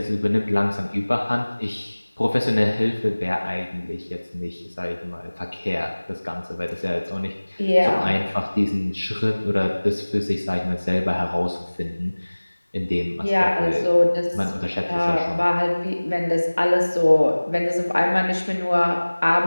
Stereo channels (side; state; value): both; inverted; correlation -1.00